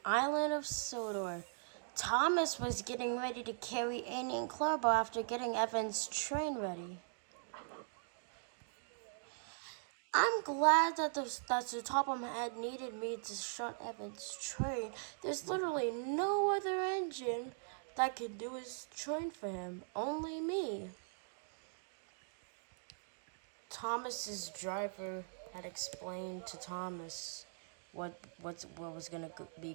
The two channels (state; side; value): silent; left; digital silence